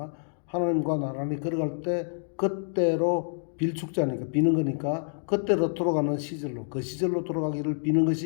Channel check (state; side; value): silent; right; digital silence